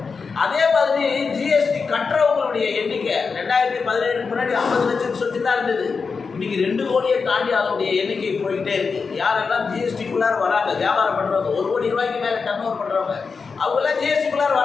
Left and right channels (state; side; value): quieter; right; 5.0 dB